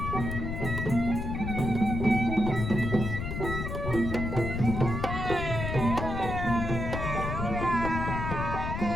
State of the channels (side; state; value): left; noise; rumble, 3 dB below the sound